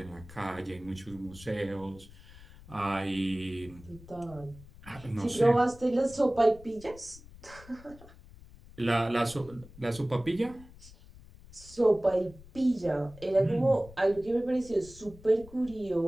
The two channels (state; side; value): noise; left; rumble, 20 dB below the sound